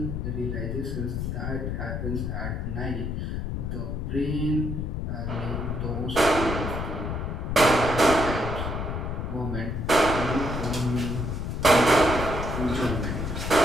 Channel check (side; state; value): left; noise; rumble, 3 dB below the sound